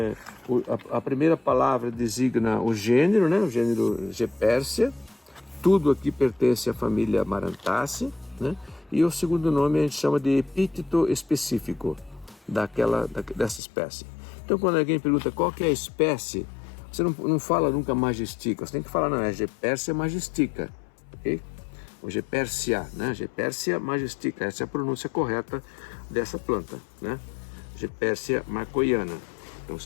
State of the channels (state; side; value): drops out; right; at 13.6 s